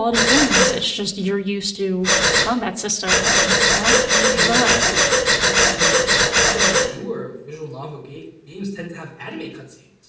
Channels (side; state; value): both; identical; correlation 1.00